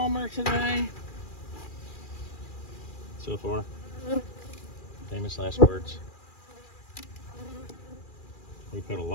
today. So far. Famous last words. We put a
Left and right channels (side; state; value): right; late; 2.4 ms